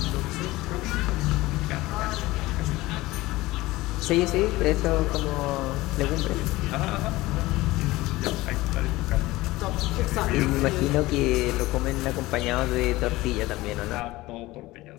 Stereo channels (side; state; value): right; quieter; 19.0 dB